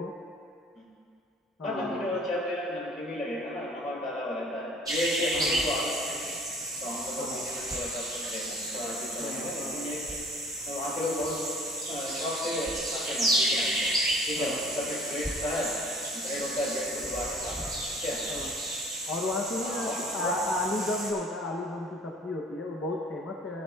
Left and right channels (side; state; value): both; normal; correlation 0.51